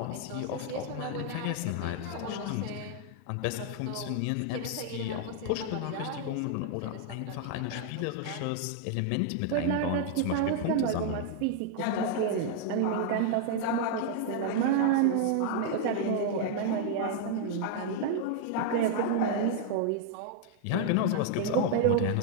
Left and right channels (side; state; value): both; different; correlation 0.00